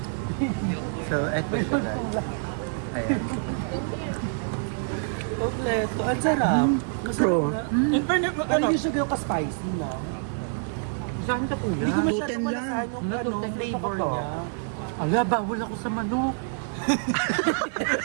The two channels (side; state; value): left; silent; digital silence